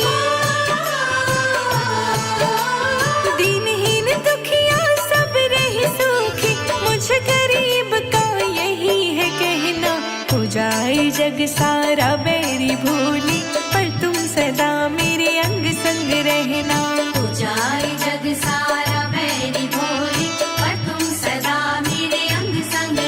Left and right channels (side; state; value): both; identical; correlation 1.00